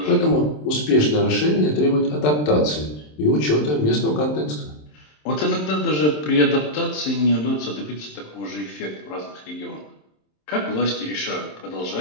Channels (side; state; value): right; late; 27 ms